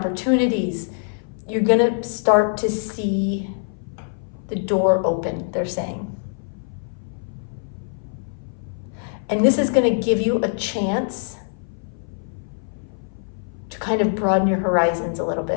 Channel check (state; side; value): silent; right; 59 dB below the other